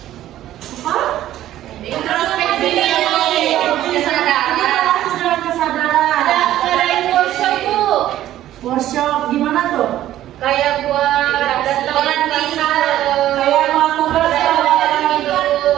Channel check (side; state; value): left; quieter; 13.2 dB